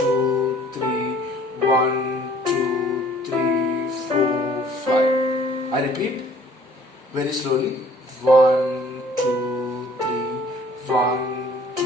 3, 1, 2, 3, 4, 5. I repeat very slowly. 1, 2, 3, 1,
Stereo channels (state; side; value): normal; both; correlation 0.55